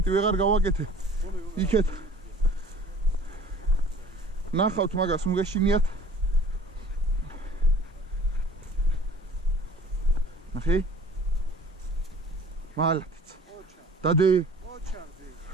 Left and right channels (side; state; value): both; normal; correlation 0.49